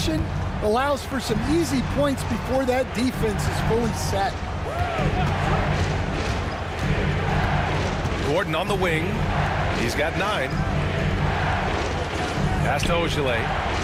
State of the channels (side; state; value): both; identical; correlation 1.00